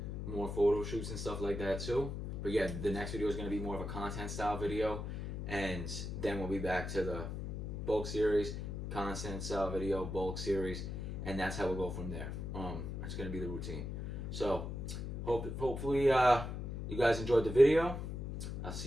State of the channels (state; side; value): noise; left; hum, 5 dB below the sound